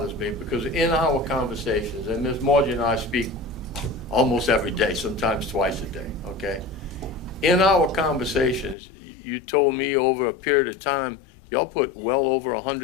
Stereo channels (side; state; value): right; drops out; at 8.8 s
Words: me, because in our conversations, and Ms. Margie and I speak almost every day, sometimes twice a day, okay? In our conversations, you told me over a period of time, y'all put well over